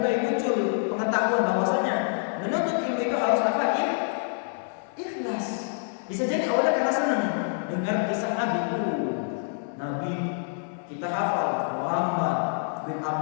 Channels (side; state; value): right; silent; 60 dB below the other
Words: muncul pengetahuan bahwasanya menuntut ilmu itu harus apa? Ikhlas. Bisa jadi awalnya karena senang dengar kisah Nabi. Nabi kita hafal Muhammad bin